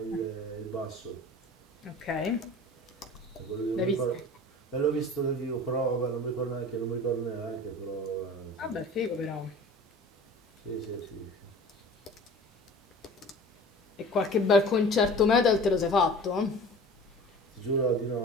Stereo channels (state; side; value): normal; both; correlation 0.41